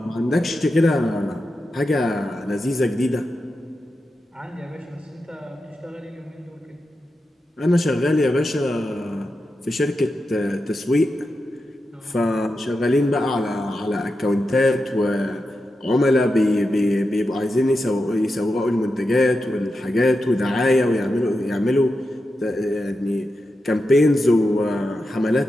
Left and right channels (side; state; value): both; normal; correlation 0.89